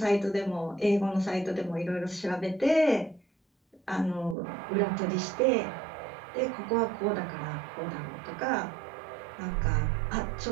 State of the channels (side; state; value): left; drops out; at 4.4 s